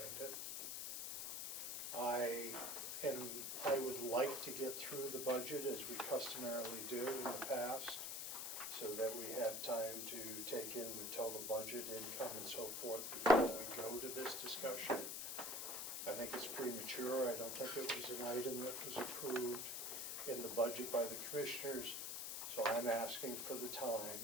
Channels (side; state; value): left; noise; hiss, 3 dB below the sound